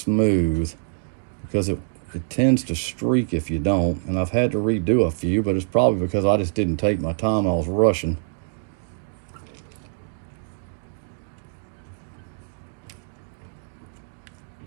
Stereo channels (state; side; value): silent; left; 62 dB below the other